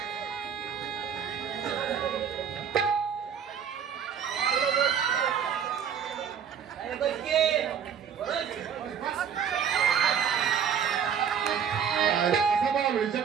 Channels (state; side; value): quieter; left; 7.8 dB